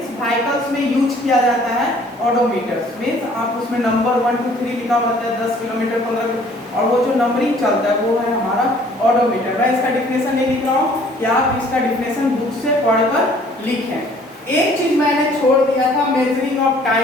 व्हीकल्स में यूज किया जाता है ऑडोमीटर्स, मींस आप उसमें नंबर 1 2 3 लिखा हुआ रहता है 10 किलोमीटर 15, और वो जो नंबरिंग चलता है वो है हमारा ऑडोमीटर। मैं इसका डिफिनेशन नहीं लिख रहा हूँ कि आप इसका डिफिनेशन बुक से पढ़कर लिखें। एक चीज मैंने छोड़ दिया था मेजरिंग ऑफ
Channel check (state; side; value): normal; both; correlation 0.56